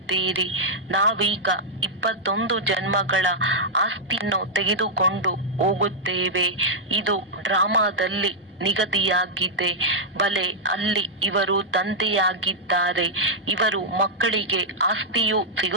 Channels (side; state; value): both; normal; correlation -0.06